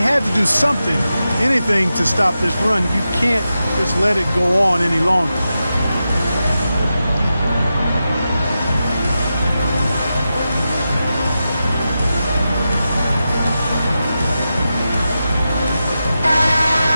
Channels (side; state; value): both; inverted; correlation -0.90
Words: to do something, anything to stop this run. You can't just let it go on any longer.